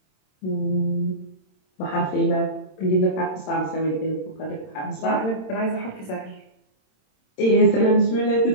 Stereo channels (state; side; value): late; right; 27 ms